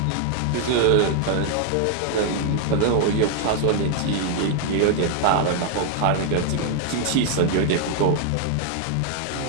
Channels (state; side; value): different; both; correlation 0.00